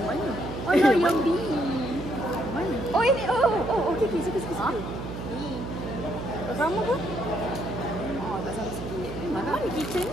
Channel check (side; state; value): right; noise; hum, 8 dB below the sound